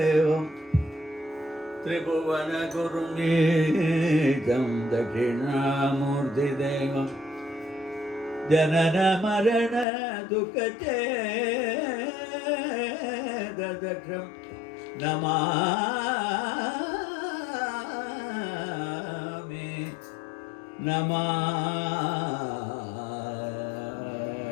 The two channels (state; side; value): drops out; right; at 9.9 s